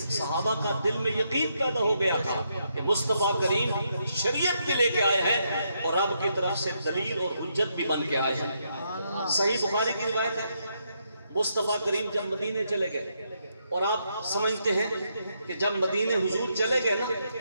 صحابہ کا دل میں یقین پیدا ہو گیا تھا کہ مصطفیٰ کریم شریعت کے لے کے آئے ہیں اور رب کی طرف سے دلیل اور حجت بھی بن کے آئے ہیں۔ صحیح بخاری کی روایت ہے، مصطفیٰ کریم جب مدینے چلے گئے، اور آپ سمجھتے ہیں کہ جب مدینے حضور چلے گئے نا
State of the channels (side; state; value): both; inverted; correlation -0.78